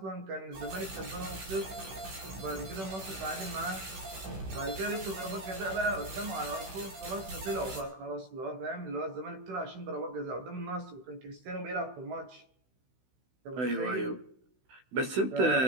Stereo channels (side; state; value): left; late; 16 ms